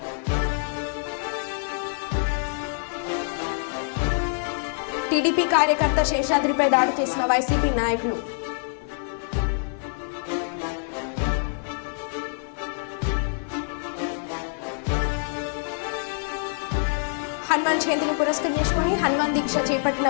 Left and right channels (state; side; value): silent; right; digital silence